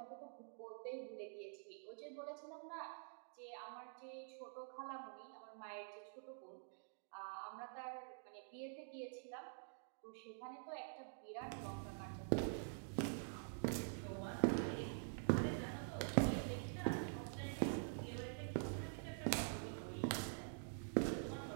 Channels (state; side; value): silent; left; digital silence